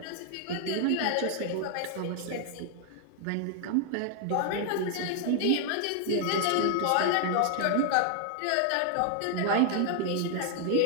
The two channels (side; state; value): both; different; correlation 0.00